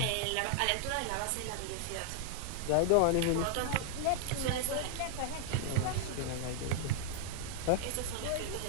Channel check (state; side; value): different; both; correlation -0.01